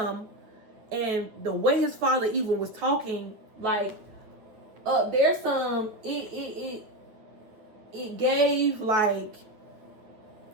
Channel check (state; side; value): late; left; 9.6 ms